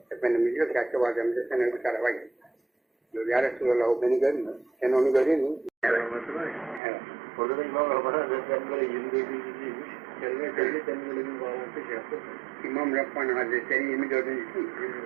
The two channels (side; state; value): left; drops out; at 6.8 s